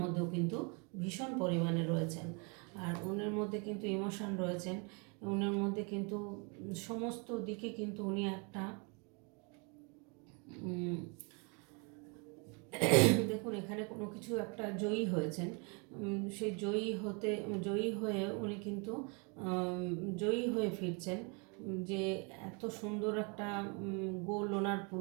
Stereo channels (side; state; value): left; quieter; 33.8 dB